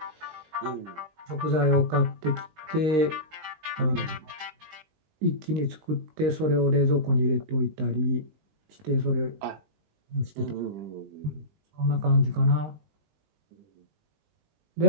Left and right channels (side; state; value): left; late; 19 ms